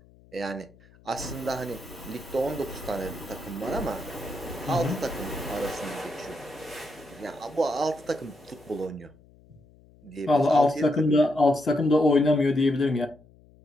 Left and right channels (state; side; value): noise; left; hum, 27 dB below the sound